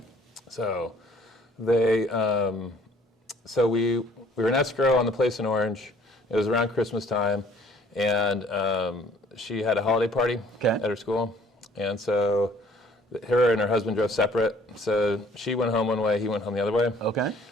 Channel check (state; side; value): normal; both; correlation 0.57